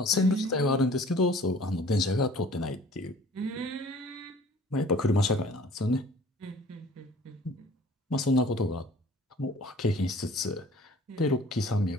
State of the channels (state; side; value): normal; both; correlation 0.50